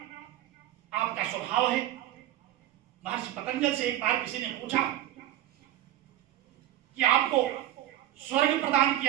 आपका स्वभाव है। महर्षि पतंजल से एक बार किसी ने पूछा कि आपको स्वर्ग प्रदान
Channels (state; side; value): quieter; left; 13.3 dB